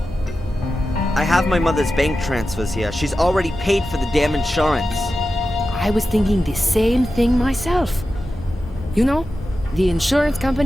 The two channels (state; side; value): normal; both; correlation 0.92